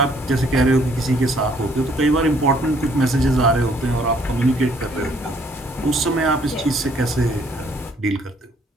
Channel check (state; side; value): normal; both; correlation 0.64